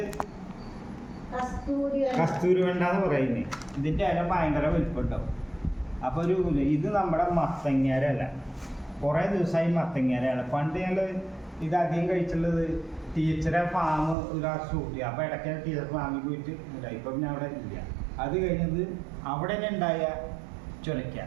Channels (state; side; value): drops out; left; at 14.2 s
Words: കസ്തൂരി വെണ്ട എന്ന് പറയുന്നത്. ഇതിൻ്റെ ഇല ഭയങ്കര വലിപ്പമുണ്ടാവും. അപ്പോൾ ഇത് നമ്മുടെ മത്തങ്ങേരല്ല, കുറേ ദിവസമായി മത്തങ്ങേരയാണ്. പണ്ട് ഞങ്ങൾ ഇത് അധികം കഴിച്ചുള്ളത് ടീച്ചറെ ഫാം ഒരു ഷൂട്ട് ചെയ്യുക. അപ്പോൾ ഇടയ്ക്ക് ടീച്ചർ ഫാമിൽ പോയിട്ട് ഉണ്ടായി. ഇപ്പം പിന്നെ അവിടെ ഇല്ല. അത് കഴിഞ്ഞത് അവിടെ തന്നെ ഉണ്ടായ ചുരയ്ക്ക.